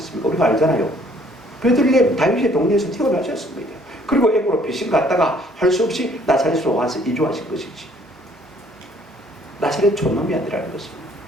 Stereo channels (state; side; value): normal; both; correlation 0.60